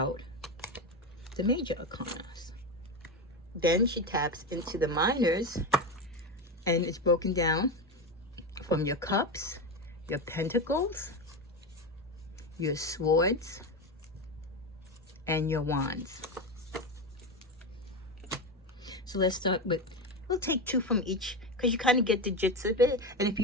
the major arcanas. Then she taps into the minors, and it's broken down from your cups, your pentacles, your swords, and your wands. So let's start with, we'll take two from each because you kind of get the gist of it. And if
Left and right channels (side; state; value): both; normal; correlation 0.18